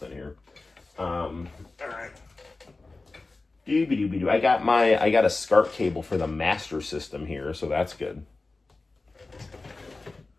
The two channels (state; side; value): quieter; right; 3.5 dB